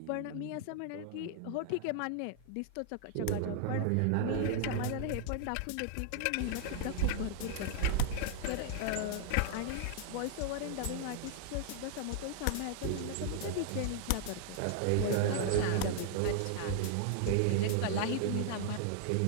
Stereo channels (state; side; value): different; both; correlation 0.00